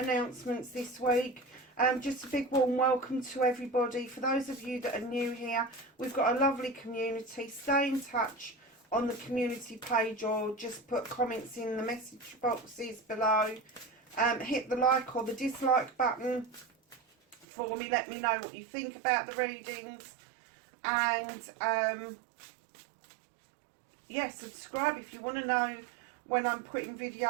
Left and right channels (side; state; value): left; drops out; at 17.4 s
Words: this week. Just a big warm welcome to everybody. For those of you that are new here, we've got a lovely community. Stay in touch on the community page or just put comments in the message boxes below. Hit the like or the dislike button for me. Let me know what you think about the readings. And yeah, subscribe if you want to know when I'm putting